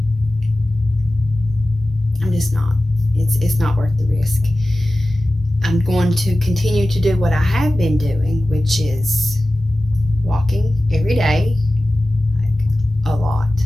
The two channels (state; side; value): normal; both; correlation 0.95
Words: just not. It's not worth the risk. I'm going to continue to do what I have been doing, which is walking every day, like a lot.